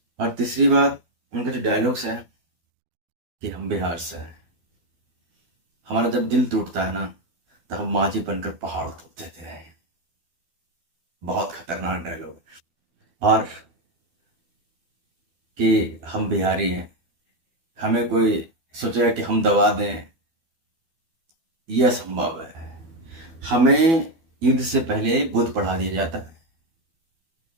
और तीसरी बात, उनका जो डायलॉग्स है कि हम बिहार से हैं, हमारा जब दिल टूटता है ना, तो हम माझी बनकर पहाड़ तोड़ देते हैं। बहुत खतरनाक डायलॉग। और कि हम बिहारी हैं, हमें कोई सोचेगा कि हम दबा दें, यह असंभव है। हमें युद्ध से पहले बुद्ध पढ़ा दिया जाता है,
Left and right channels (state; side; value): late; left; 12 ms